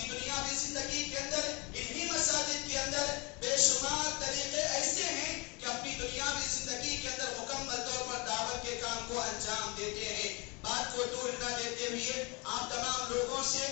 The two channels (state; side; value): quieter; right; 28.3 dB